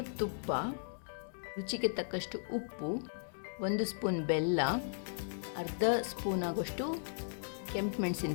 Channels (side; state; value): right; silent; digital silence